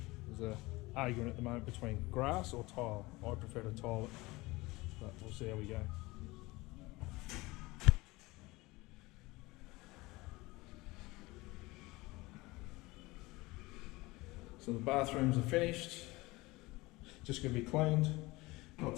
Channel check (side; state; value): right; quieter; 21.7 dB